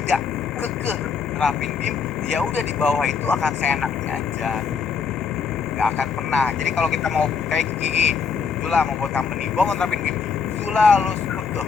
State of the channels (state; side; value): quieter; right; 5.9 dB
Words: kekeh nerapin BIM, ya udah di bawah itu akan seenaknya aja, nggak akan pernah. Jadi kalau kita mau kayak gigi, Zula mau buat company, gua mau nerapin BIM, Zula lu tuh,